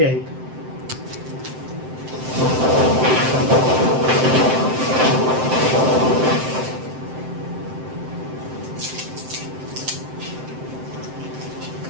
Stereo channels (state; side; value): late; left; 7.7 ms